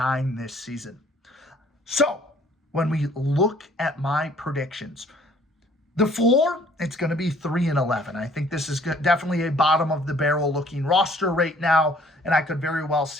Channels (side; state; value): both; normal; correlation 0.58